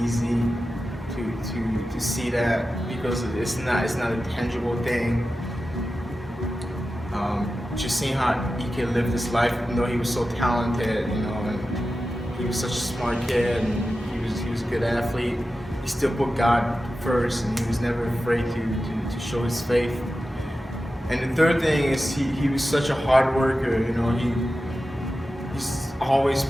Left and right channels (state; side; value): normal; both; correlation 0.93